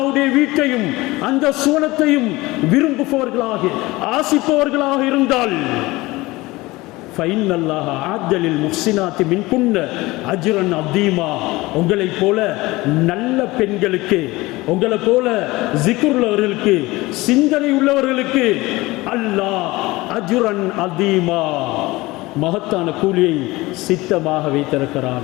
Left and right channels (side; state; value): right; quieter; 20.6 dB